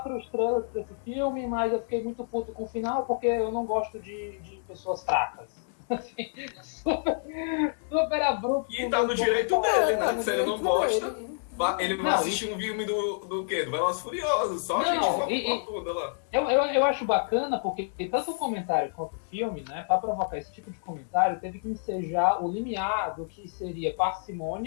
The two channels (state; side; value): silent; right; 59 dB below the other